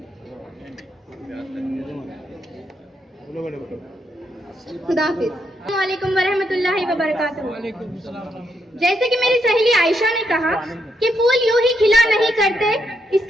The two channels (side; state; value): both; normal; correlation 0.78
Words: खुदाफिज। अस्सलामुअलैकुम वरहमतुल्लाहि वबरकातुहू। जैसे कि मेरी सहेली आयशा ने कहा कि फूल यूं ही खिला नहीं करते,